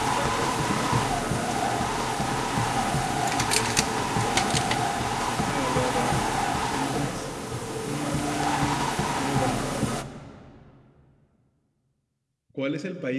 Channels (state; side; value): identical; both; correlation 1.00